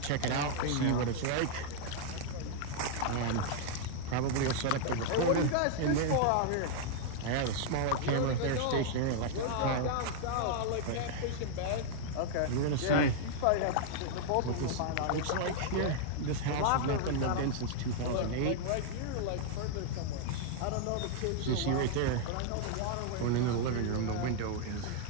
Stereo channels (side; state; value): both; different; correlation -0.01